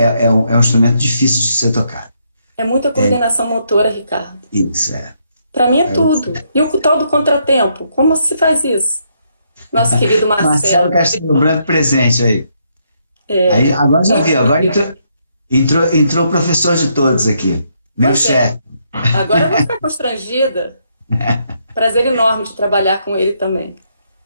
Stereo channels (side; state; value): both; inverted; correlation -0.75